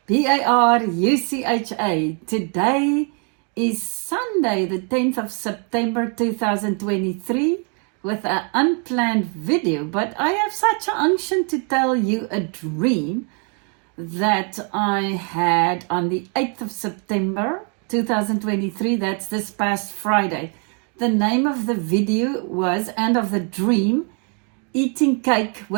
Barucha. Today is Sunday, the 10th of September 2023, with an unplanned video. But I have such an unction to tell you a dream that I had on the 8th of September 2023. That's this past Friday. The name of the video was, and of the dream, Eating Cake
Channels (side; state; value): left; quieter; 38.3 dB